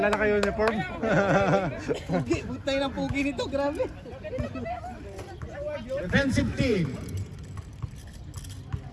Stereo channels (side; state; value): both; identical; correlation 1.00